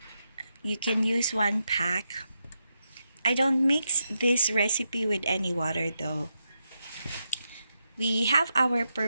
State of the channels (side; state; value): both; inverted; correlation -0.85